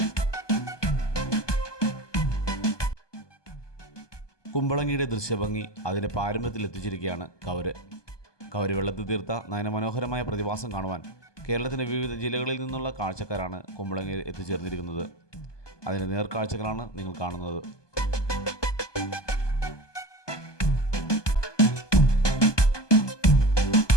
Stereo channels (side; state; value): right; late; 1.2 ms